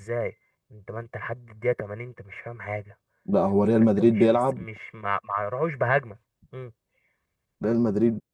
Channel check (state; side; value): identical; both; correlation 1.00